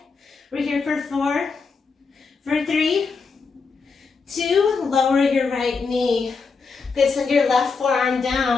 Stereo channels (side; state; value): right; quieter; 4.8 dB